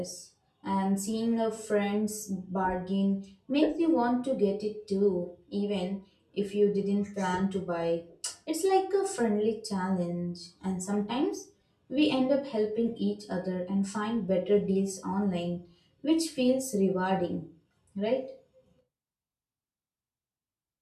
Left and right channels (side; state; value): both; identical; correlation 1.00